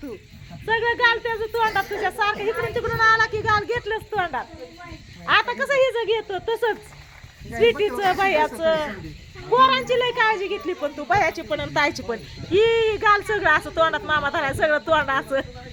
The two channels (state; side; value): identical; both; correlation 1.00